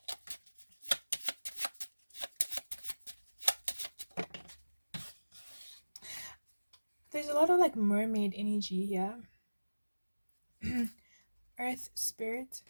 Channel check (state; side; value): inverted; both; correlation -1.00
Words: There's a lot of like mermaid energy here. Earth Spirit.